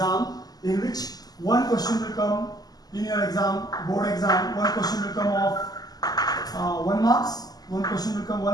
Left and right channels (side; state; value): right; late; 0.19 ms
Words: in which one question will come in your exam, board exam. One question will come of 1 marks, one question will come